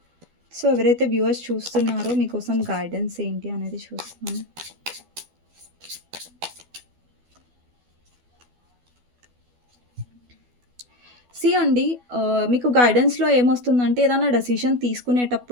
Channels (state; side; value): late; left; 12 ms